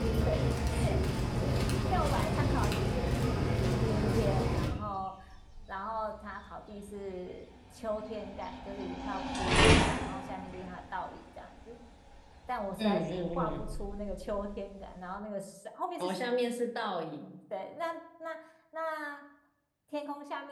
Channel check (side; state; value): both; identical; correlation 1.00